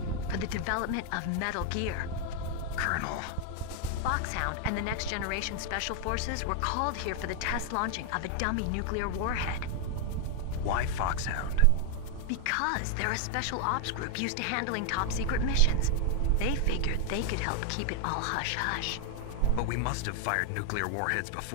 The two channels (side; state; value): both; different; correlation 0.00